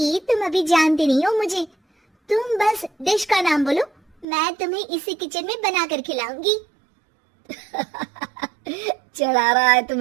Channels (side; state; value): left; drops out; at 4.2 s